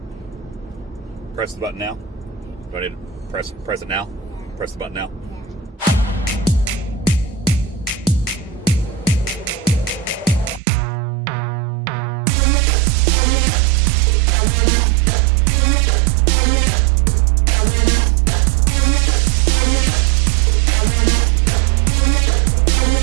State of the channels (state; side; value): drops out; left; at 10.6 s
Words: Press the button now. Do I need to press it now? Press the button now. Yeah.